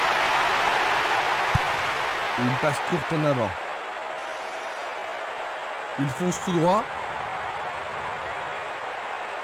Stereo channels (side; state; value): both; identical; correlation 1.00